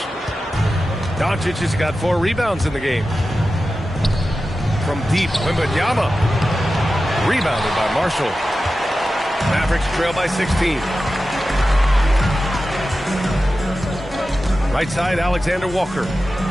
Doncic has got 4 rebounds in the game. From deep, Wembanyama. Rebounded by Marshall. Mavericks trail by 16. Right side, Alexander Walker.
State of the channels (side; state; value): both; normal; correlation 0.93